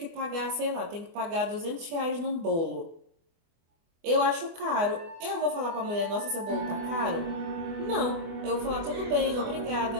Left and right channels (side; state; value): left; late; 24 ms